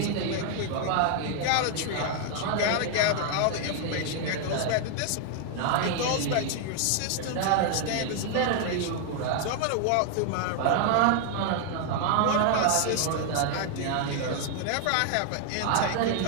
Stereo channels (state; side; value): different; both; correlation 0.00